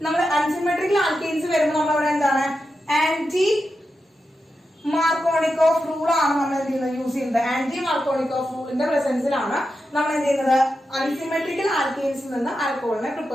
നമ്മൾ അൺസിമെട്രിക്കൽ ആൽക്കീൻസ് വരുമ്പോൾ നമ്മളവിടെ എന്താണ് ആന്റി മാർക്കോണിക്കോഫ് റൂൾ ആണ് നമ്മൾ എന്ത് ചെയ്യുന്നത് യൂസ് ചെയ്യുന്നത്. ആന്റി മാർക്കോണിക്കോഫ് റൂളിന്റെ പ്രസൻസിലാണ് നമ്മൾ എന്ത് ചെയ്യുന്നത് അൺസിമെട്രിക്കൽ ആൽക്കീൻസിൽ നിന്ന് ആൽക്കഹോളിനെ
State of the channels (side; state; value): both; normal; correlation 0.89